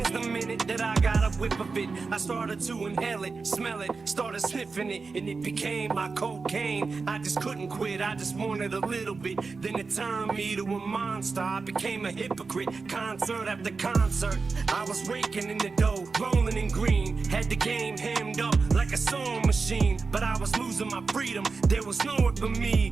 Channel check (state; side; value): quieter; left; 4.4 dB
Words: the minute that I got a whiff of it. I started to inhale it, smell it, started sniffing it, and it became my cocaine. I just couldn't quit, I just wanted a little bit. Then it turned me to a monster, I became a hypocrite. Concert after concert, I was raking in the dough, rolling in green. Had the game hemmed up like a sewing machine, but I was losing my freedom. There was nowhere for me